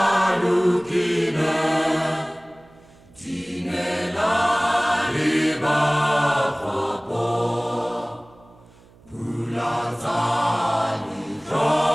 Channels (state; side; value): noise; right; hum, 27 dB below the sound